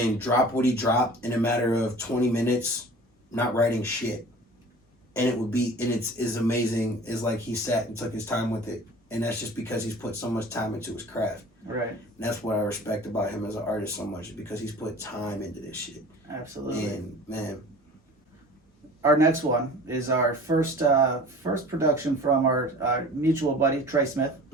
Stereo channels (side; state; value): both; normal; correlation 0.43